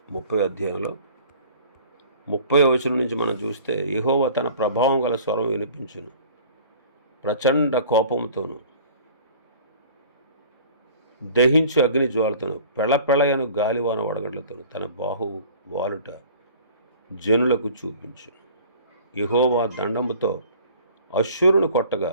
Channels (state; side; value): inverted; both; correlation -0.47